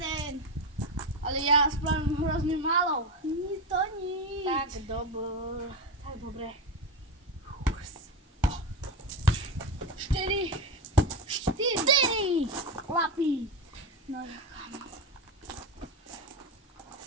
Ale ja spravím hrozne málo. To nič. Tak dobre. 4. Chlapi. No kam.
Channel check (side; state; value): both; normal; correlation 0.16